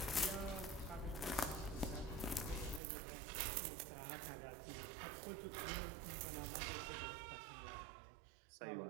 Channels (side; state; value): left; drops out; at 2.8 s